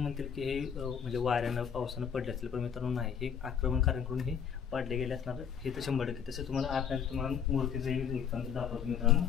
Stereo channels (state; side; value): quieter; right; 7.7 dB